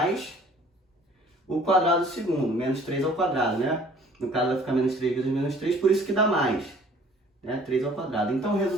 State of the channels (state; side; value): normal; both; correlation 0.54